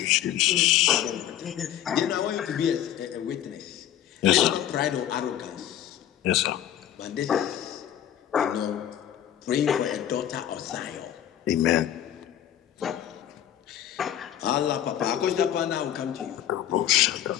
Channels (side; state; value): right; quieter; 11.2 dB